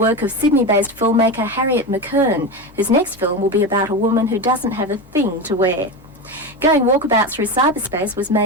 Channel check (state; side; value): normal; both; correlation 0.20